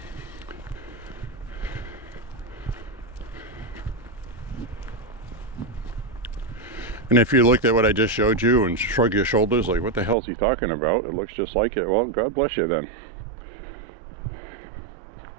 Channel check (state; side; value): drops out; left; at 10.2 s